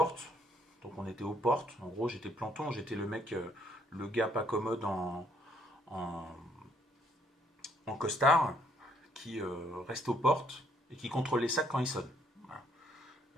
Donc on était aux portes. En gros, j'étais planton, j'étais le mec, le gars pas commode en, en costard, qui reste aux portes et qui contrôle les sacs quand ils sonnent. Voilà.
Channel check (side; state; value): both; normal; correlation 0.67